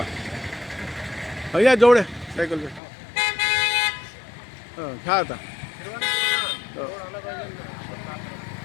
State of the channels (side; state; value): right; drops out; at 2.8 s